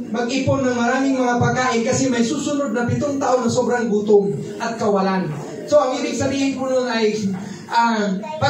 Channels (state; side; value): identical; both; correlation 1.00